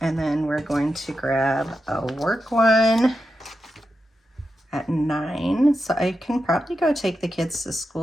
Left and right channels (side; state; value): both; normal; correlation 0.89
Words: And then we're going to grab a work one at 9. So I can probably go take the kids to